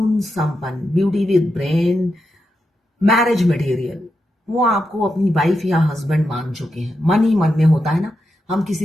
संपन्न, beauty with brain, marriage material. वो आपको अपनी वाइफ या हस्बैंड मान चुके हैं। मन ही मन में होता है ना, हम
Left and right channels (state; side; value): normal; both; correlation 0.86